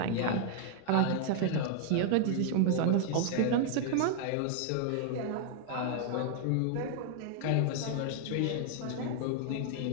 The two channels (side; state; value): both; different; correlation 0.00